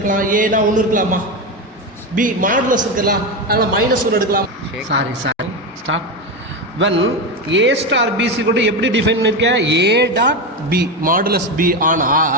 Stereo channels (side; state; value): both; normal; correlation 0.15